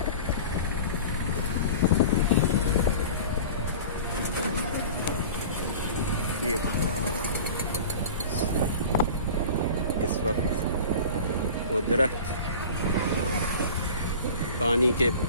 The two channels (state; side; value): inverted; both; correlation -0.37